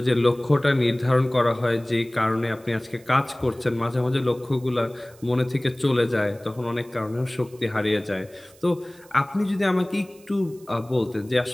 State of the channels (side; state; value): right; noise; hiss, 26 dB below the sound